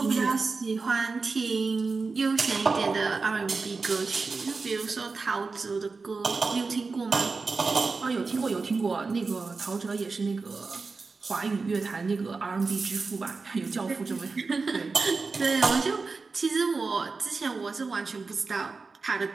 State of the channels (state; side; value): quieter; left; 4.3 dB